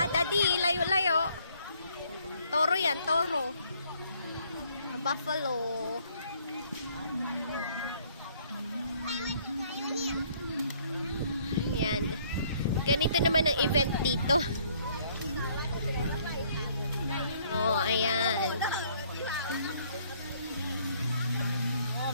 Daddy, layo-layo. Toro yan, toro. Buffalo. Yan. Ganito naman ang event dito. Oh, ayan.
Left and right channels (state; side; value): inverted; both; correlation -0.63